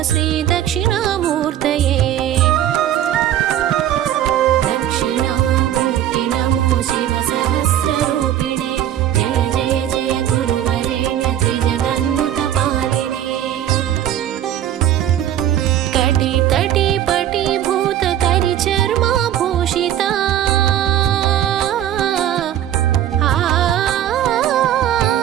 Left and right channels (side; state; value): left; quieter; 11.4 dB